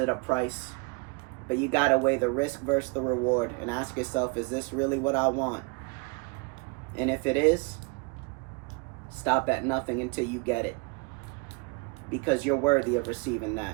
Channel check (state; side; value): quieter; left; 29.7 dB